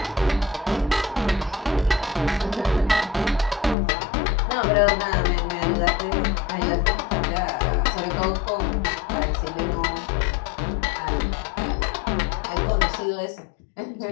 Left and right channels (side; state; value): right; drops out; at 3.8 s